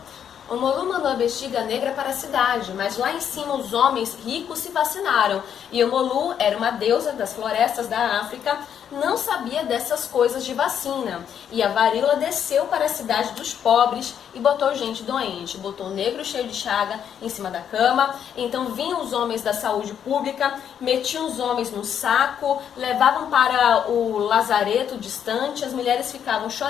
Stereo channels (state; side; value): quieter; right; 8.7 dB